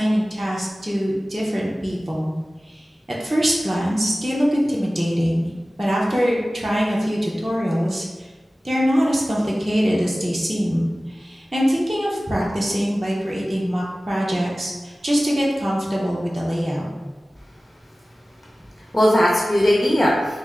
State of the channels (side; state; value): both; normal; correlation 0.96